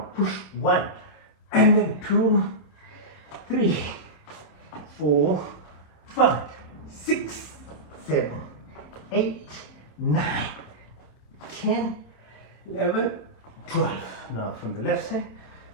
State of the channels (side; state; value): right; late; 27 ms